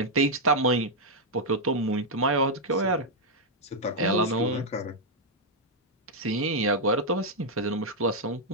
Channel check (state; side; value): normal; both; correlation -0.03